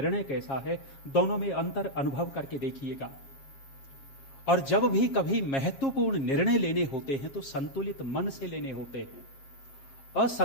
कैसा है, दोनों में अंतर अनुभव करके देखिएगा। और जब भी कभी महत्वपूर्ण निर्णय लेने होते हैं तो संतुलित मन से लेने होते हैं।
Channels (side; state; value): right; late; 7.4 ms